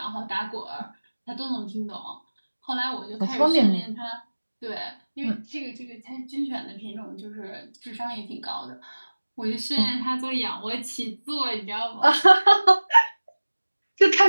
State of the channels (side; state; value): both; inverted; correlation -1.00